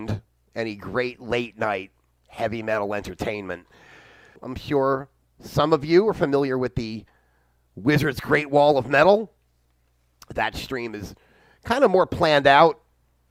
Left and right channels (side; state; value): both; identical; correlation 1.00